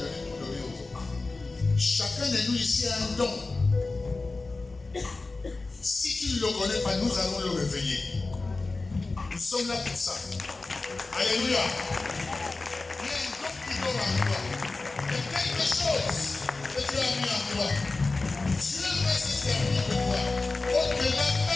pour donner aux autres. Chacun de nous ici a un don. Si tu ne le connais pas, nous allons le réveiller. Nous sommes là pour ça. Alléluia. Il y a un don qui dort en toi. Il y a quelque chose que Dieu a mis en toi. Dieu va se servir de toi. Au-delà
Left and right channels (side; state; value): right; quieter; 3.5 dB